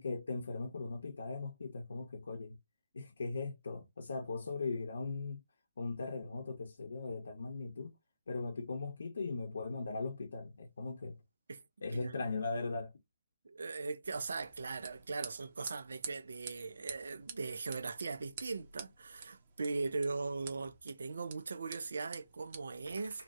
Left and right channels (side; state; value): both; inverted; correlation -0.84